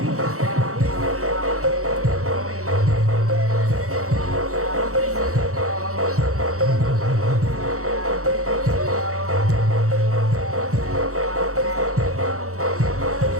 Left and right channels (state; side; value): late; left; 0.64 ms